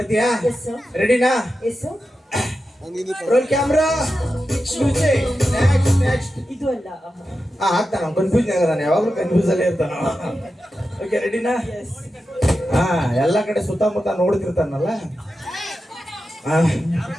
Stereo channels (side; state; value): both; normal; correlation 0.91